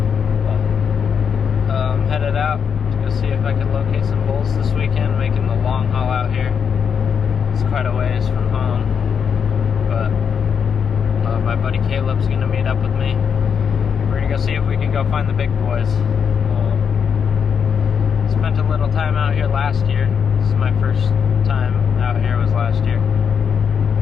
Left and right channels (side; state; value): right; quieter; 6.9 dB